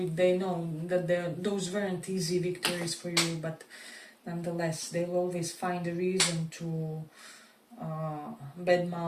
they know that those weren't easy victories for you, but nonetheless they will always find a reason to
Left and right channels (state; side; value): identical; both; correlation 1.00